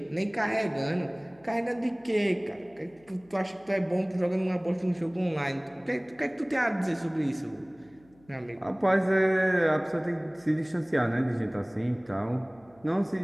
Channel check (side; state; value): left; noise; hum, 29 dB below the sound